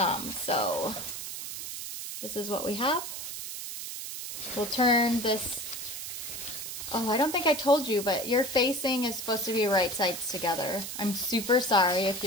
So this is what we have. We'll turn this. Oh, I don't think I told you, but your facing is supposed to be right sides together. I'm super sorry if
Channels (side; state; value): right; noise; hiss, 7 dB below the sound